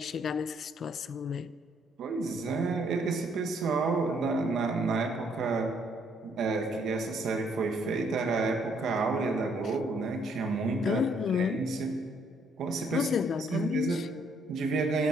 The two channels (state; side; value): normal; both; correlation 0.68